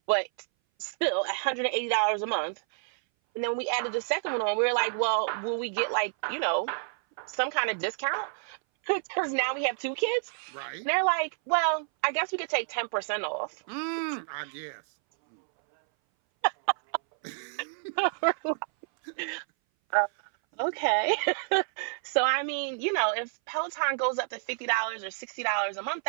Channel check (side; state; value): left; silent; 59 dB below the other